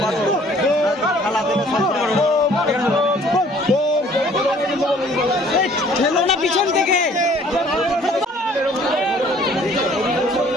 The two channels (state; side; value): normal; both; correlation 0.56